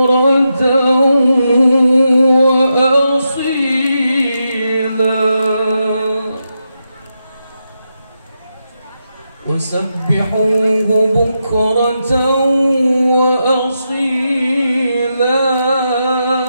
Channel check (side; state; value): both; inverted; correlation -0.85